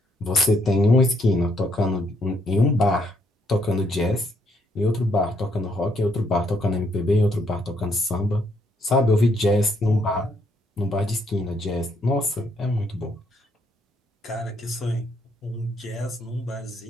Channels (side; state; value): both; normal; correlation 0.72